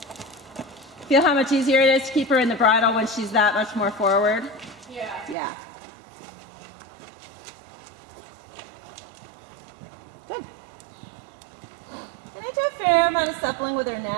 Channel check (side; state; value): left; drops out; at 5.4 s